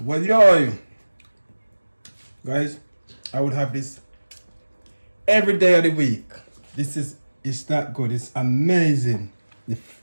yo, guys, I would have this every day of the week. It's that good. It's amazing.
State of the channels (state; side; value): inverted; both; correlation -1.00